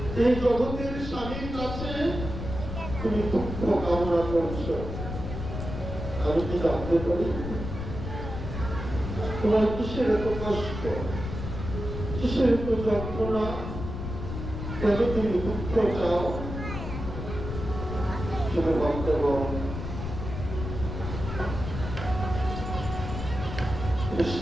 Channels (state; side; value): noise; left; rumble, 6 dB below the sound